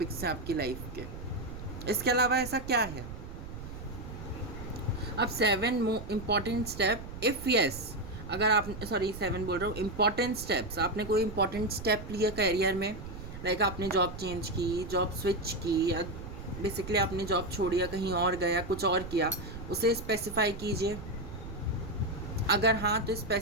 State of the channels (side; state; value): right; noise; rumble, 11 dB below the sound